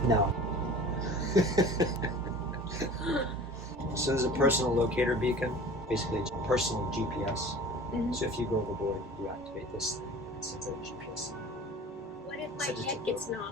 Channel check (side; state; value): both; normal; correlation 0.41